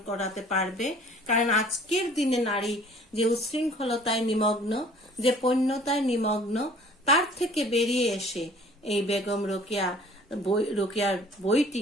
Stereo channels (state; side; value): normal; both; correlation 0.52